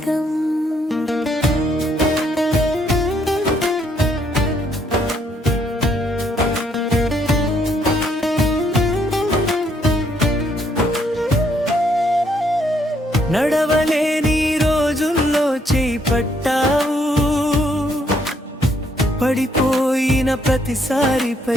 నడవలేని రోజుల్లో చేయి పట్టావు, పడిపోయిన ప్రతిసారి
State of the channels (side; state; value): both; normal; correlation 0.70